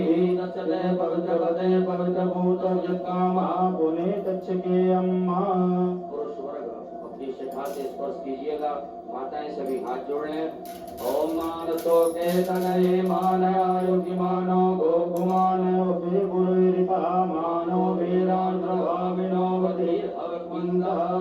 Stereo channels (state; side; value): identical; both; correlation 1.00